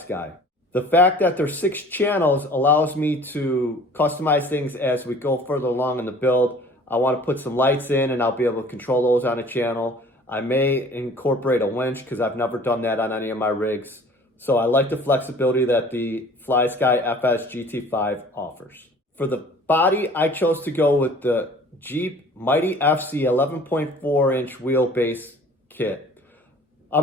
The fact that there's 6 channels allows me to customize things as we go further along in the build. I want to put some lights in and I'll be able to control those on a channel. I may incorporate a winch because I've never done that on any of my rigs. So I like the flexibility that the Flysky FS GT-5 offers. For the body, I chose to go with the Jeep Mighty FC 11.4 inch wheelbase kit. I'm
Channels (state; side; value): normal; both; correlation 0.49